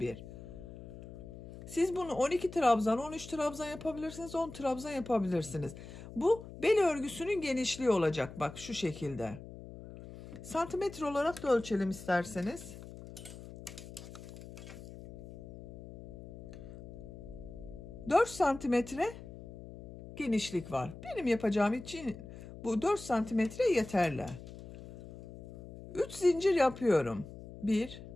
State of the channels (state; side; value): noise; left; hum, 14 dB below the sound